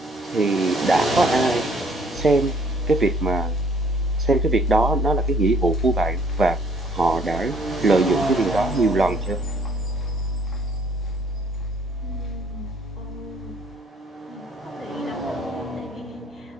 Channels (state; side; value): normal; both; correlation 0.61